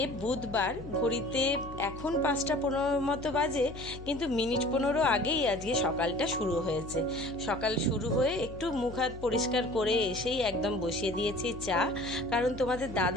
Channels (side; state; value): left; noise; hum, 13 dB below the sound